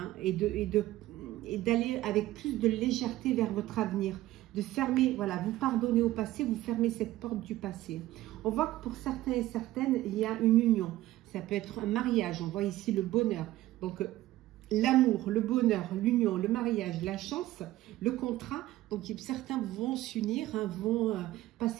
et d'aller avec plus de légèreté vers votre avenir. De fermer, voilà, vous pardonnez au passé, vous fermez cette porte du passé. On voit que pour certains et certaines, il y a une union. Ça peut être un mariage, on voit ici le bonheur. Donc, l'amour, le bonheur, l'union, le mariage, la chance, le contrat. Donc, certains vont s'unir, hein, vont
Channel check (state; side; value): quieter; left; 15.8 dB